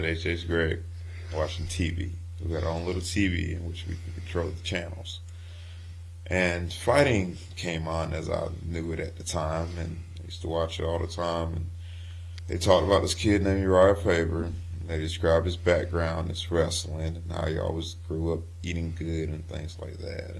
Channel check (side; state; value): both; identical; correlation 1.00